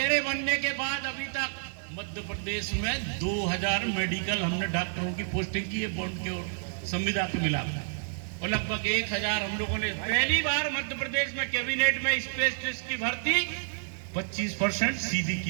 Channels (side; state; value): left; silent; 58 dB below the other